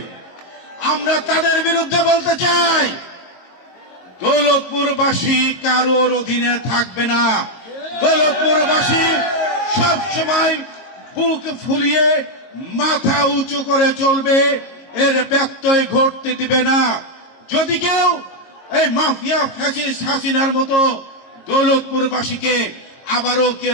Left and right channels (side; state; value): right; late; 22 ms